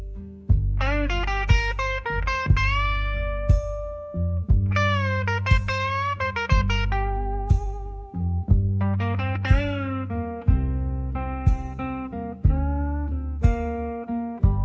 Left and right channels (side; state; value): both; identical; correlation 1.00